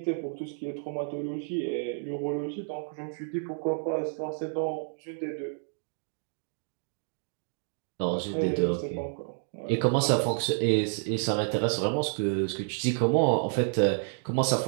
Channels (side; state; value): left; silent; digital silence